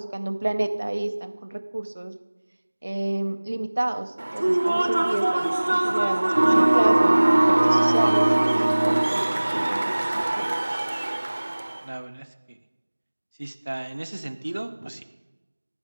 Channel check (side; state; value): both; inverted; correlation -1.00